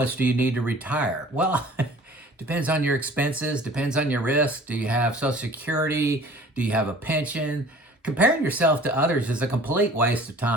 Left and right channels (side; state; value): both; normal; correlation 0.48